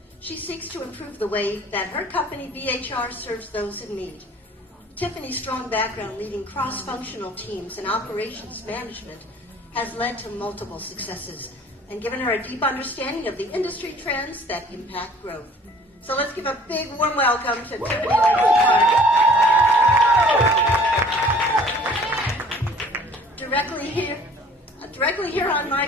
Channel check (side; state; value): both; normal; correlation 0.51